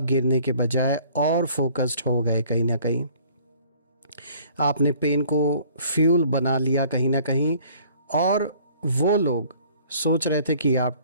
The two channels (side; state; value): both; inverted; correlation -0.55